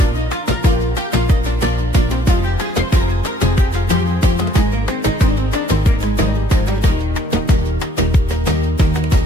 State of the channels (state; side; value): normal; both; correlation 0.62